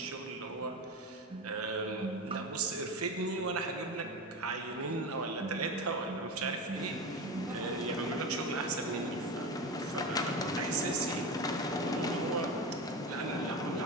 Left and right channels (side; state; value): both; normal; correlation 0.23